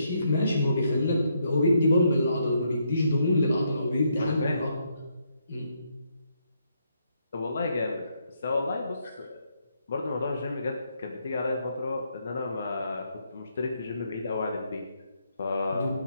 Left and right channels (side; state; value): both; inverted; correlation -0.76